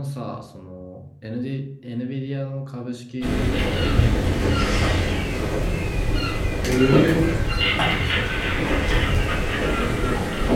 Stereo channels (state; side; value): identical; both; correlation 1.00